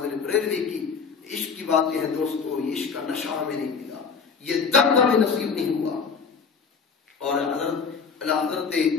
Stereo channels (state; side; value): quieter; right; 5.6 dB